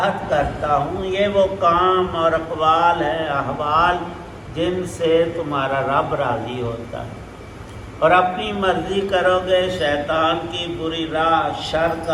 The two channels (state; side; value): identical; both; correlation 1.00